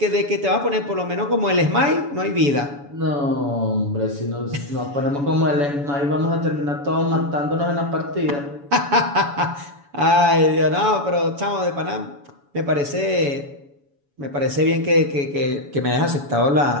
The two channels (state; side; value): late; left; 7.0 ms